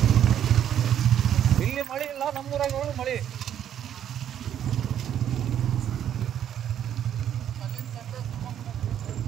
ಇಲ್ಲಿ ಮಳೆ ಇಲ್ಲ, ನಮ್ಮೂರಾಗ ಹೋಗಿ ಮಳೆ.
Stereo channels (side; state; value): left; quieter; 10.0 dB